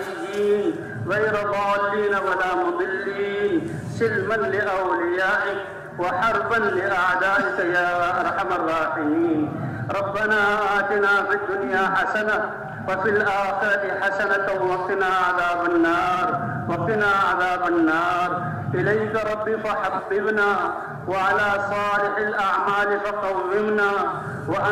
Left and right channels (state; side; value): identical; both; correlation 1.00